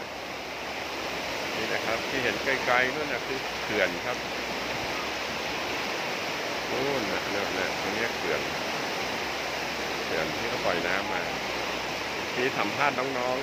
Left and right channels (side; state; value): both; identical; correlation 1.00